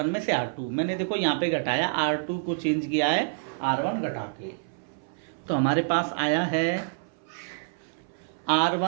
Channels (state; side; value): silent; left; 60 dB below the other